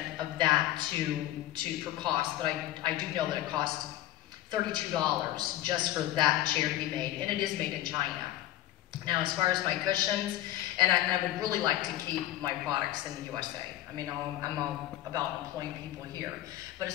of that for cost, but I do know that it costs $32 just for that chair to be made, and it is made in China. Now, as far as my cushions, and I would really like to keep my products in the USA. I mean, I'm all about employing people here. But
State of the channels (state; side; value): quieter; right; 14.2 dB